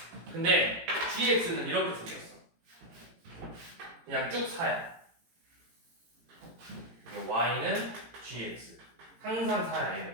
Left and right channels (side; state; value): left; late; 18 ms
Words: 근데 gx는 이렇게 생겼어. 그냥 쭉 4야. y는 gx. 항상 4야.